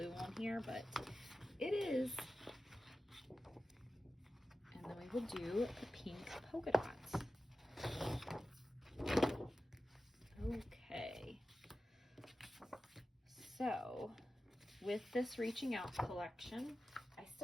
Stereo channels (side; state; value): both; normal; correlation 0.94